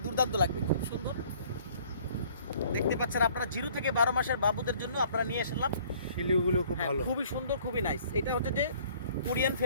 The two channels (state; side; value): inverted; both; correlation -0.56